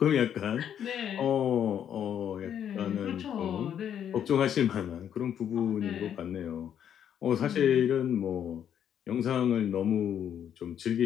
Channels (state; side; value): quieter; right; 9.3 dB